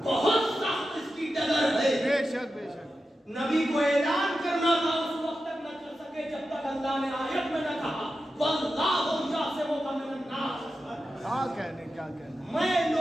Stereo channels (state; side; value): normal; both; correlation 0.91